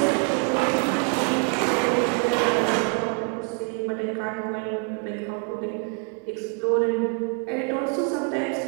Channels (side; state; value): left; quieter; 37.2 dB